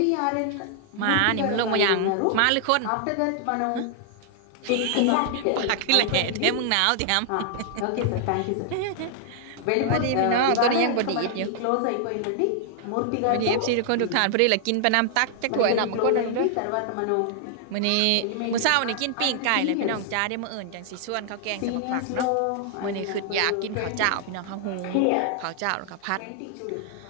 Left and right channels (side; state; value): both; different; correlation 0.00